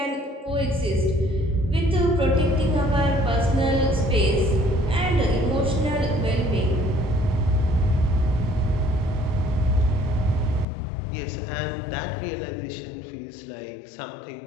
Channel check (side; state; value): right; drops out; at 10.7 s